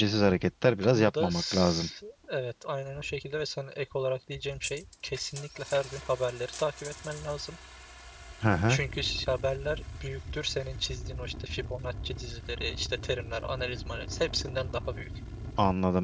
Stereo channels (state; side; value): identical; both; correlation 1.00